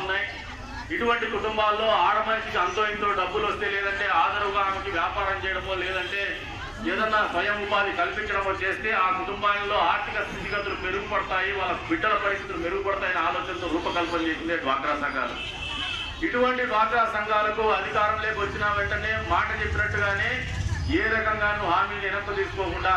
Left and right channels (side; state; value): both; identical; correlation 1.00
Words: ఇటువంటి కుటుంబాల్లో ఆడ మనిషికి అంతో ఇంతో డబ్బులు వస్తే, లేదంటే ఆదరుగా ఆమెకి వ్యాపారం చేయడమో, లేదంటే ఏదన్నా స్వయం ఉపాధి కల్పించడమో చేస్తే ఆ కుటుంబాల్లో ఆర్థిక స్థితిగతులు మెరుగుపడతాయి, వాళ్ళ బిడ్డల పరిస్థితులు మెరుగుపడతాయనే ఆలోచనతో రూపకల్పన చేసిందే డ్వాక్రా సంఘాలు. ఇటువంటి డ్వాక్రా సంఘాలకు అధికారంలోకి వచ్చిన వెంటనే మాట చెప్పినట్టుగానే ఏ రకంగానూ హామీలు వెనక్కు తీసుకోకుండా